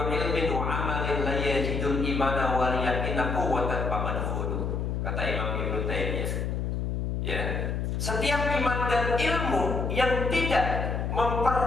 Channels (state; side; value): noise; left; hum, 1 dB below the sound